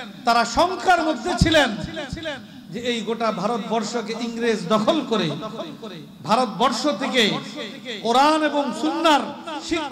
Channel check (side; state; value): both; identical; correlation 1.00